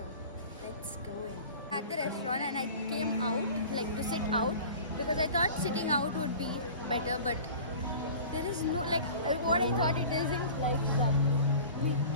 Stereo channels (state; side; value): inverted; both; correlation -0.41